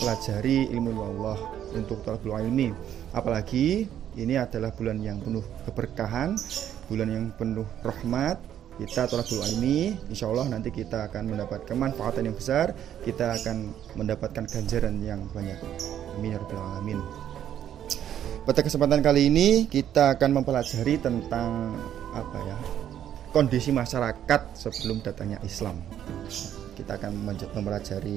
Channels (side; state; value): left; quieter; 10.4 dB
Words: ilmu Allah, untuk talabul ilmi. Apalagi ini adalah bulan yang penuh keberkahan, bulan yang penuh rahmat. Kita talabul ilmi, insya Allah nanti kita akan mendapat kemanfaatan yang besar, kita akan mendapatkan ganjaran yang banyak. Amin ya rabbal alamin. Pada kesempatan kali ini kita akan mempelajari tentang kondisi masyarakat sebelum datangnya Islam. Kita akan